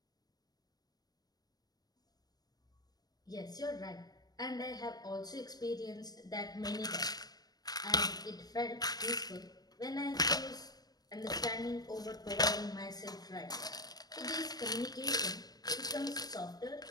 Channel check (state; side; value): late; right; 0.19 ms